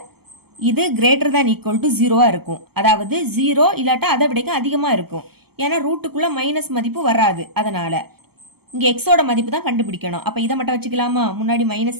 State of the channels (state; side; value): late; left; 0.96 ms